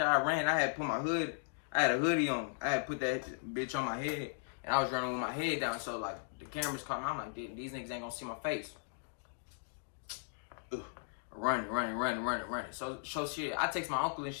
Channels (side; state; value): right; silent; digital silence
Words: I ran, I had put my hood, I had a hoodie on. I had put that bitch on my head. And I was running with my head down. So like, the cameras caught me. I'm like, these niggas ain't gonna see my face. Ugh. Running. So shit, I text my uncle and